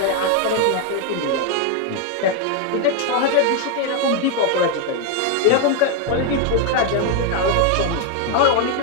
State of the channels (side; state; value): both; different; correlation 0.01